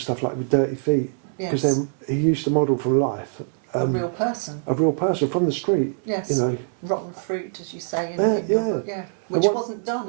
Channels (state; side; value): silent; left; 63 dB below the other